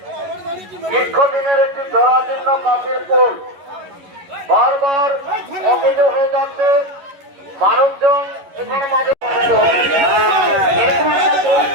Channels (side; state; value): left; late; 11 ms